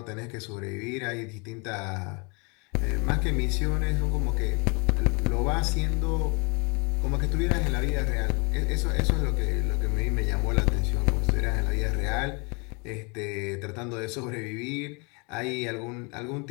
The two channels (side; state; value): right; quieter; 31.8 dB